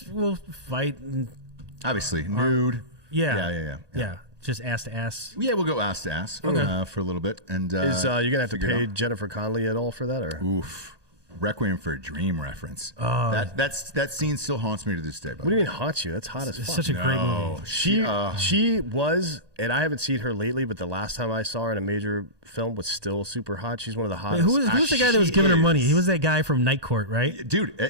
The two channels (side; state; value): left; late; 1.2 ms